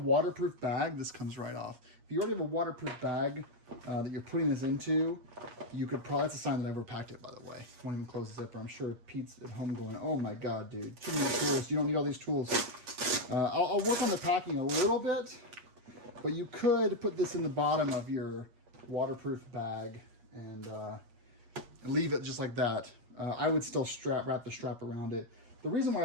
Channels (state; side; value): late; left; 8.5 ms